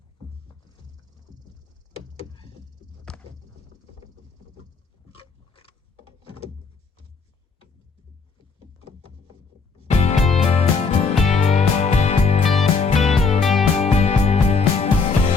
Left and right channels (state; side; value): quieter; right; 4.8 dB